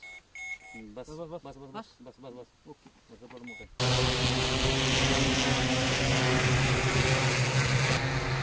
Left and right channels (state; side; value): identical; both; correlation 1.00